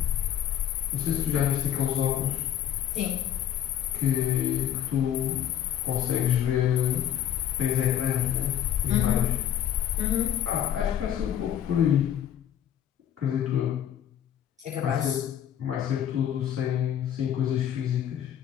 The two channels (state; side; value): quieter; right; 10.2 dB